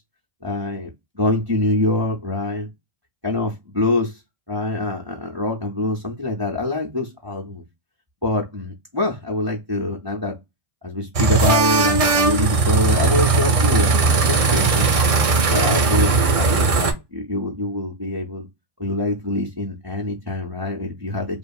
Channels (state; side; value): late; left; 1.6 ms